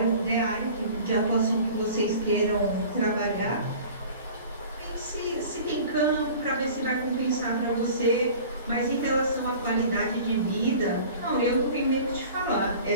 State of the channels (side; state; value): both; inverted; correlation -0.43